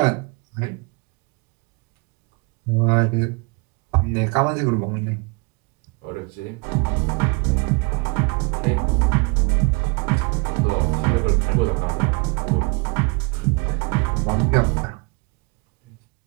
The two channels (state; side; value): quieter; left; 30.1 dB